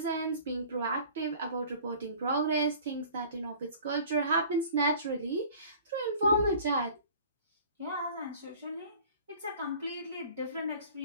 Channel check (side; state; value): both; inverted; correlation -0.47